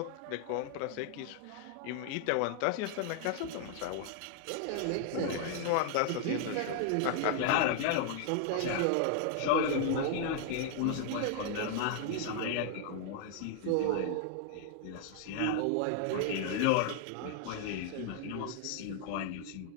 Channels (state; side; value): different; both; correlation 0.00